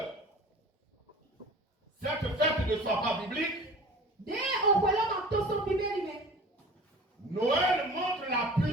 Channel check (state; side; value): normal; both; correlation 0.41